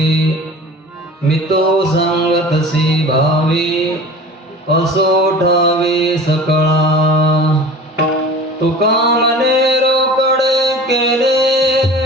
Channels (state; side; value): normal; both; correlation 0.39